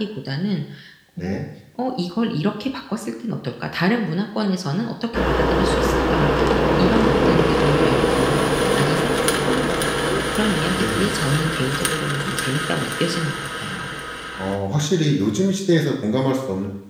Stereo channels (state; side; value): identical; both; correlation 1.00